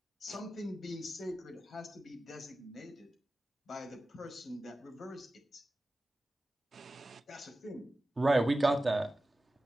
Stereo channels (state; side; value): normal; both; correlation 0.95